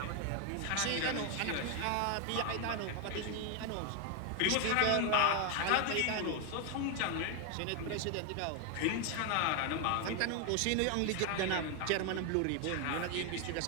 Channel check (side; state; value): both; different; correlation 0.01